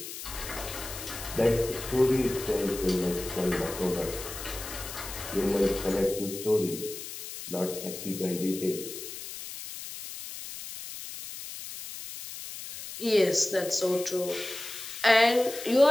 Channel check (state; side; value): noise; left; hiss, 10 dB below the sound